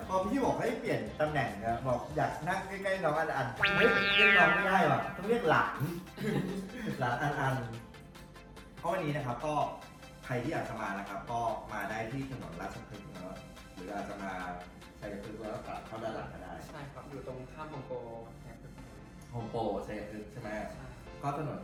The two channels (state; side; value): identical; both; correlation 1.00